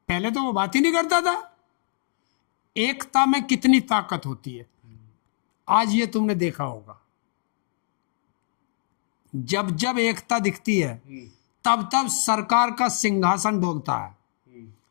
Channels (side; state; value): right; silent; digital silence